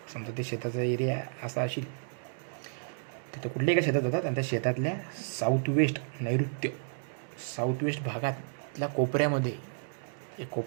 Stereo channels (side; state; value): left; silent; digital silence